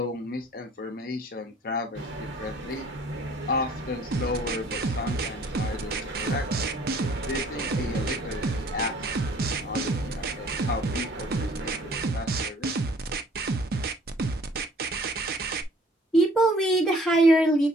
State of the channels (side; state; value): both; normal; correlation 0.56